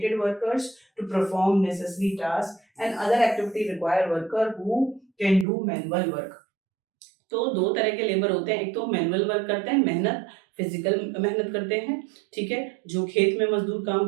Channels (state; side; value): drops out; left; at 5.5 s